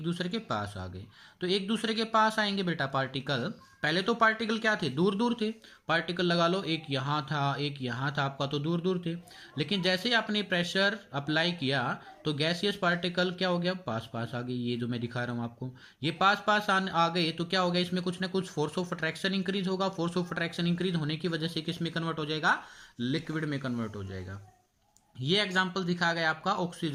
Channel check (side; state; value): both; identical; correlation 1.00